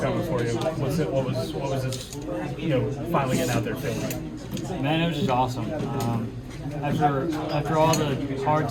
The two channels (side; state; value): both; identical; correlation 1.00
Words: for you. What was this? Finally getting out there feeling like? Man, it was just awesome. After all the hard